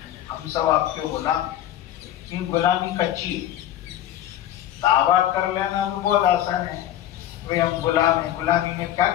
ہم سب آپ کے غلام. یہ غلامی کچی ہے، دعویٰ کر لینا تو بہت آسان ہے، بھئی ہم غلام ہیں، غلامی میں کیا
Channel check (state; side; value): quieter; right; 12.3 dB